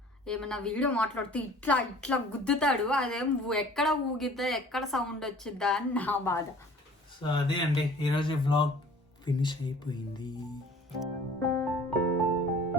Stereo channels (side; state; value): both; normal; correlation 0.49